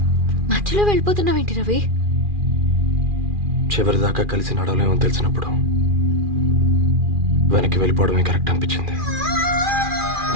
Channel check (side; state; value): left; late; 2.4 ms